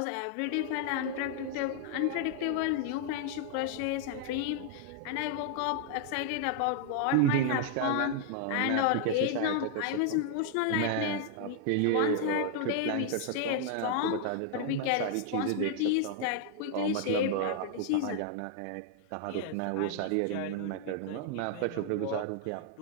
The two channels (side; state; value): both; different; correlation 0.00